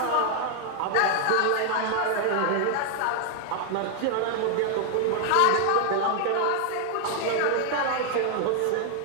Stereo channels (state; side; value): different; both; correlation 0.00